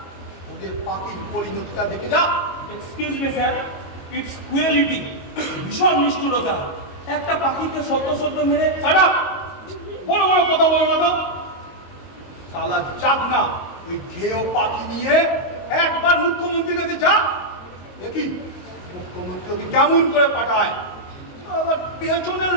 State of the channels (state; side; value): late; right; 22 ms